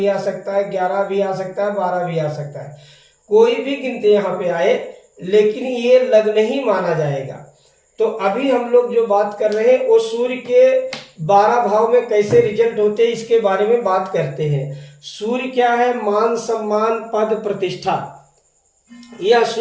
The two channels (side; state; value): both; identical; correlation 1.00